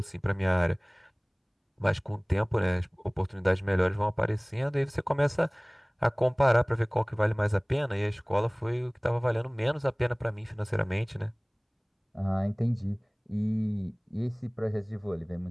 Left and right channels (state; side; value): identical; both; correlation 1.00